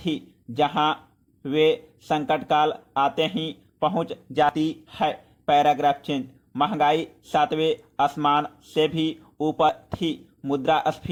जहां वे संकट काल आते ही पहुंच जाती है। Paragraph change. महंगाई 7वें आसमान से भी ऊपर थी।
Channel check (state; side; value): identical; both; correlation 1.00